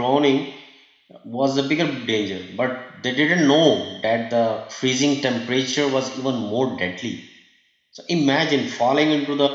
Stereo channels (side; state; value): both; identical; correlation 1.00